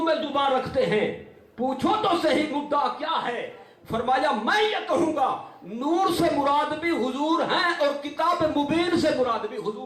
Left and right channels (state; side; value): identical; both; correlation 1.00